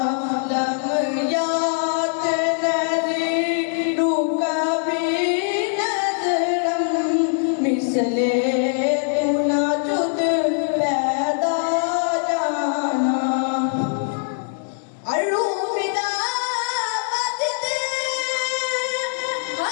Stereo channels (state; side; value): silent; right; digital silence